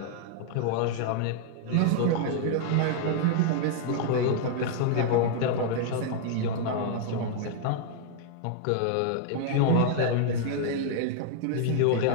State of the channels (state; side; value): different; both; correlation -0.01